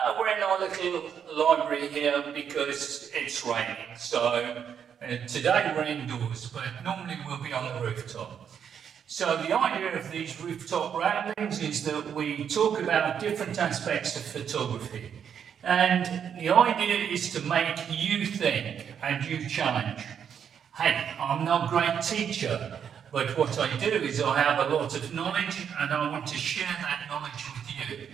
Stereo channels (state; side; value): quieter; left; 8.0 dB